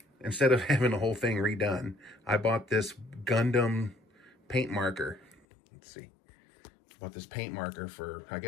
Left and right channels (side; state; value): right; drops out; at 5.4 s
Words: instead of having the whole thing redone, I bought this Gundam paint marker. Let's see. Bought this paint marker for, I